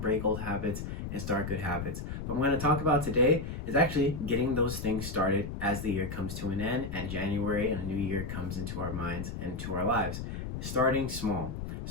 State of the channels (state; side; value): noise; left; rumble, 6 dB below the sound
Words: old habits and start good habits. But what I'm going to talk about today is actually getting those things started as the year comes to an end, and January and a new year comes into our minds and to our lives. Starting small.